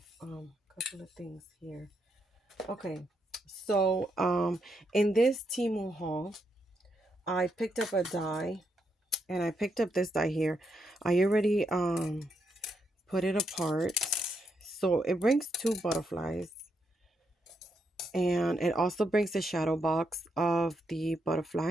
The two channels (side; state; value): both; normal; correlation 0.79